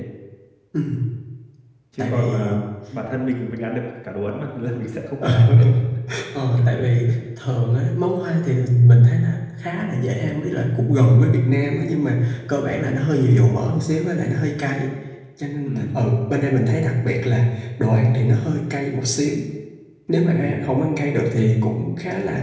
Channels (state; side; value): identical; both; correlation 1.00